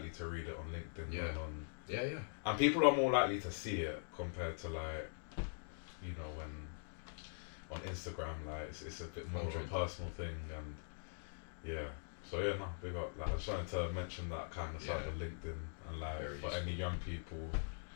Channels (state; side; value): silent; right; digital silence